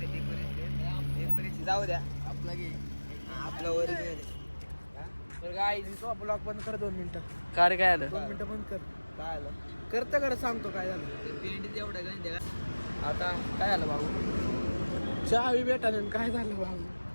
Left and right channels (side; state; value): both; inverted; correlation -1.00